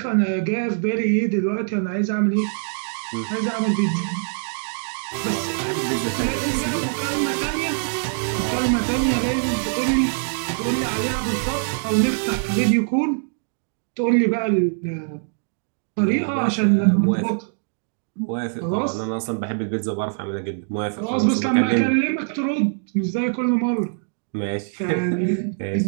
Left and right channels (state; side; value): silent; left; digital silence